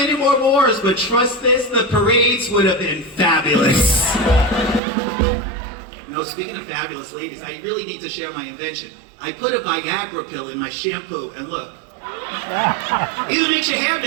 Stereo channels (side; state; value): left; drops out; at 4.8 s